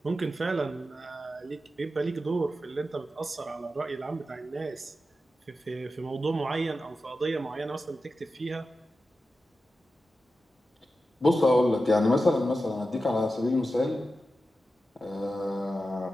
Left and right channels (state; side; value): normal; both; correlation 0.92